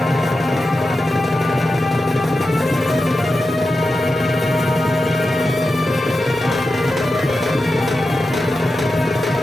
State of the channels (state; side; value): normal; both; correlation 0.91